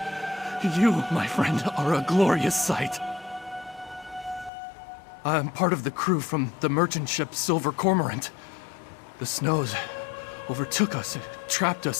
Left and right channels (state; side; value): drops out; right; at 4.5 s